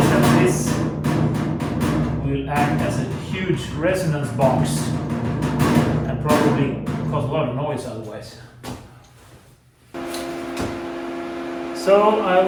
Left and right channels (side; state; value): both; identical; correlation 1.00